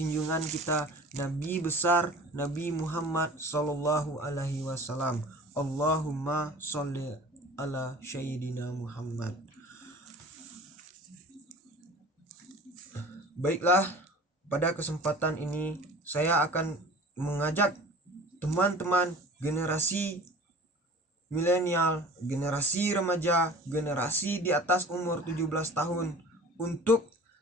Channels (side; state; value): both; normal; correlation 0.41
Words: kita Nabi besar Nabi Muhammad sallallahu alaihi wasallam. Allahumma sholli ala sayyidina Muhammad. Baiklah, pada kesempatan ini saya akan mengajak teman-teman generasi milenial, generasi remaja, generasi di atas umur 17 tahun untuk